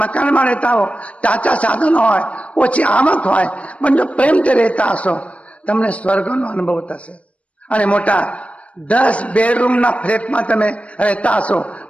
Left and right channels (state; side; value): late; right; 0.063 ms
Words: મકાનમાં રહેતા હો, કાચા સાધનો હોય, ઓછી આવક હોય, પણ જો પ્રેમથી રહેતા હશો તમને સ્વર્ગનો અનુભવ થશે. અને મોટા 10 બેડરૂમના ફ્લેટમાં તમે રહેતા હશો,